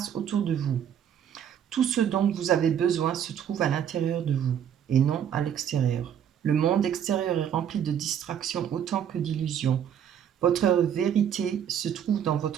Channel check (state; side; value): quieter; left; 9.1 dB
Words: autour de vous. Tout ce dont vous avez besoin se trouve à l'intérieur de vous et non à l'extérieur. Le monde extérieur est rempli de distractions autant que d'illusions. Votre vérité se trouve dans